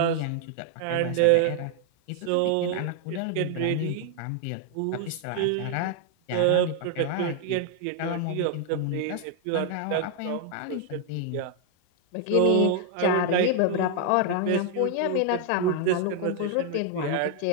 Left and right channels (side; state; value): both; different; correlation 0.00